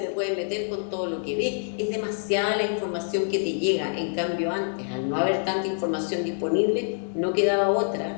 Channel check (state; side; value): silent; right; digital silence